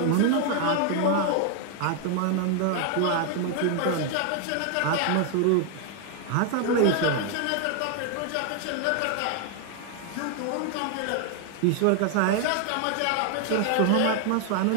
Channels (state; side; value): different; both; correlation 0.00